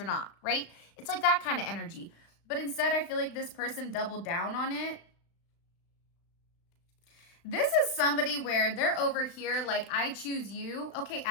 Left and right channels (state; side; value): late; right; 35 ms